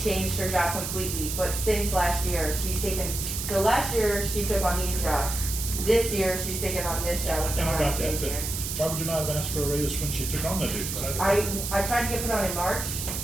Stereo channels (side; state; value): right; noise; hiss, 4 dB below the sound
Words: her job completely, but since last year, so last year, she took on these jobs. This year, she's taken on this job, which is And I why I'm got that, changing but it. why would you not have asked for a raise when she took on the duties? I tried to get put on in March,